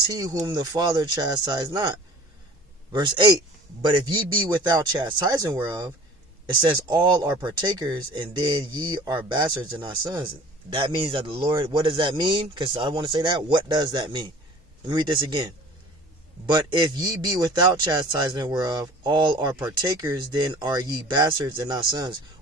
whom the Father chastised not? Verse 8, but if ye be without chastising whereof, it says all are partakers, and then ye are bastards and not sons. That means that the Lord, what does that mean? Because I want to say that. What does that mean? Let me read this again. But if ye be without chastisement whereof all are partakers, then are ye bastards and not sons.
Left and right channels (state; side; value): normal; both; correlation 0.45